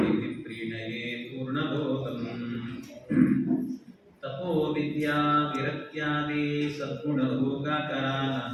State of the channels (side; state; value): both; identical; correlation 1.00